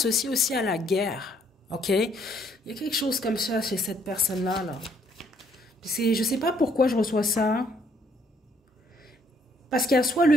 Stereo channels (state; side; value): normal; both; correlation 0.67